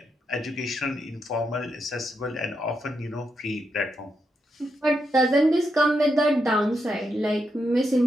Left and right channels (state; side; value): normal; both; correlation 0.83